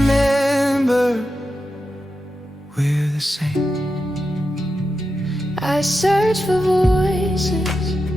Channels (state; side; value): normal; both; correlation 0.89